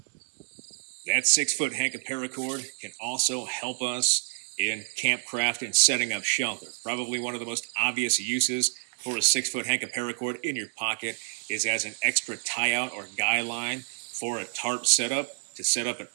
That 6-foot hank of paracord can also help us in campcraft and setting up shelter. Probably one of the most obvious uses for a 6-foot hank of paracord in your pocket is as an extra tie-out or guy line for a tarp setup, to set up an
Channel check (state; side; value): silent; left; digital silence